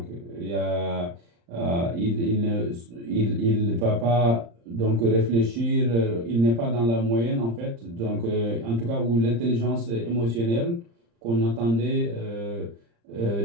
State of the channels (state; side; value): late; left; 35 ms